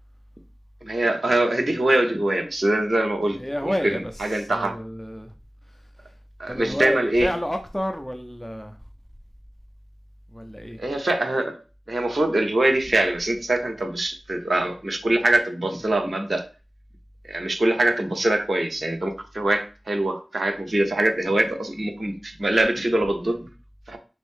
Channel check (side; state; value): both; normal; correlation 0.95